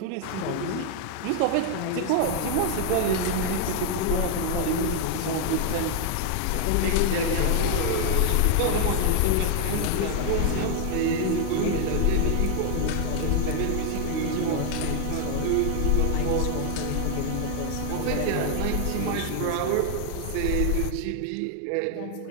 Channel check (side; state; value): both; different; correlation 0.00